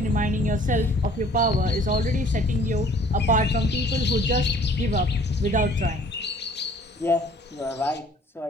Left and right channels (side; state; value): both; normal; correlation 0.54